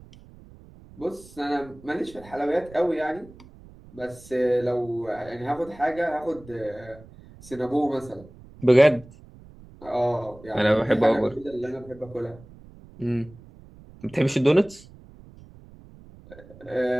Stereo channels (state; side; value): noise; right; rumble, 21 dB below the sound